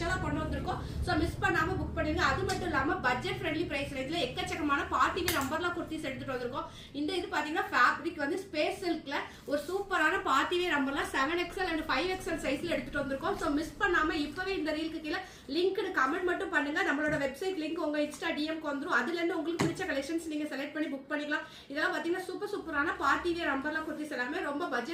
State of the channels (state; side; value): identical; both; correlation 1.00